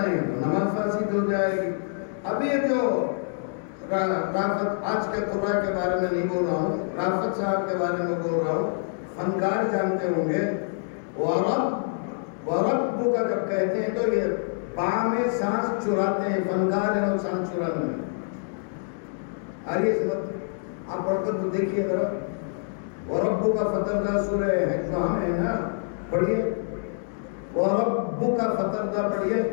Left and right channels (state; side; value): silent; right; digital silence